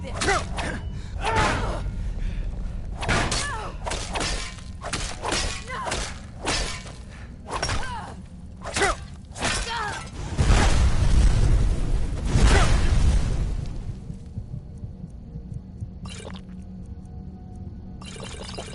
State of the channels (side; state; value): both; identical; correlation 1.00